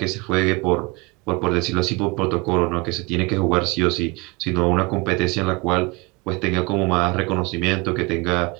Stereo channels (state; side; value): quieter; left; 26.0 dB